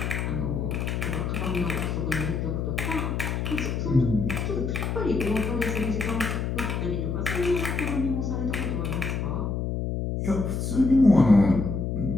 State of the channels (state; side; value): noise; left; hum, 1 dB below the sound